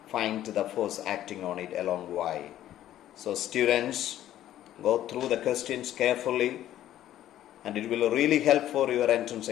find the force acting on it along Y. So students, go through the questions carefully and it will really help for your entrance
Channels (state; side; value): quieter; right; 12.5 dB